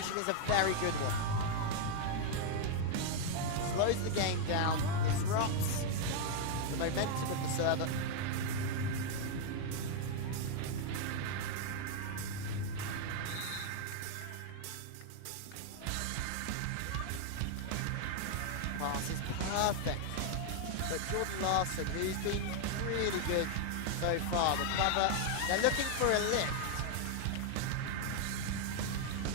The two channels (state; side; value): different; both; correlation 0.00